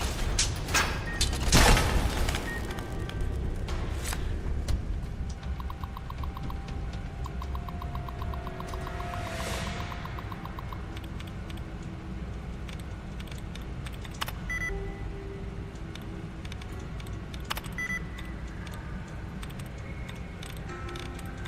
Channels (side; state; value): both; identical; correlation 1.00